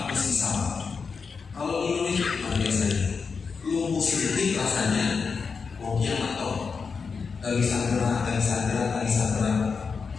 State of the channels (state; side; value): quieter; right; 5.3 dB